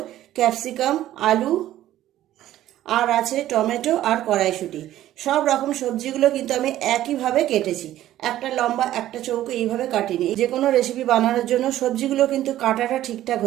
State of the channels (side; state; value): left; quieter; 13.4 dB